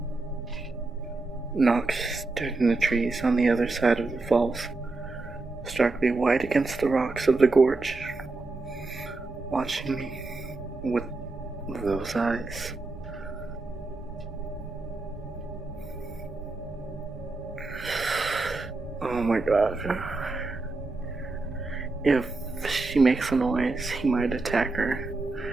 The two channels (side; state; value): left; quieter; 3.4 dB